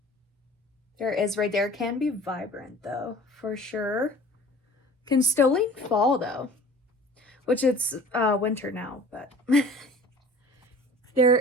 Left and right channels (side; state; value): both; normal; correlation 0.45